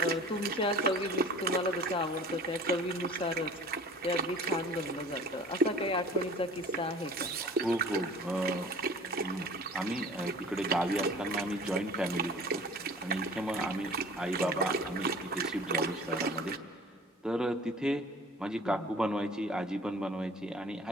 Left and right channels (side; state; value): both; normal; correlation 0.45